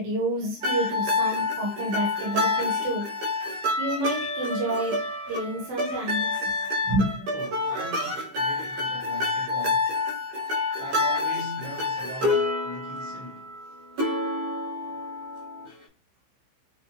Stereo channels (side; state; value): left; late; 15 ms